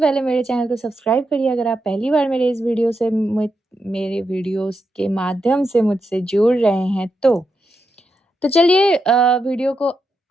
मेरे चैनल को सब्सक्राइब करिए अगर आप पहली बार मेरे इस वीडियो से मेरे वीडियोज़ के माध्यम से मुझसे जुड़ रहे हैं तो। तो चलिए वीडियो को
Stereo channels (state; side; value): normal; both; correlation 0.85